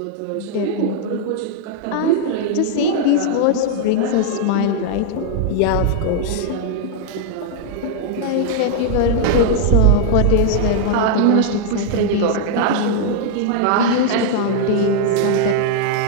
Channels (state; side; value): different; both; correlation 0.00